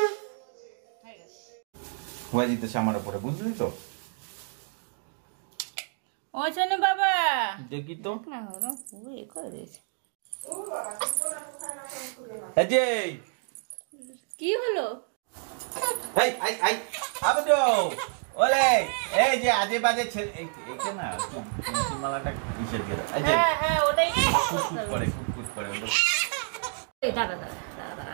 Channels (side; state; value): left; silent; 59 dB below the other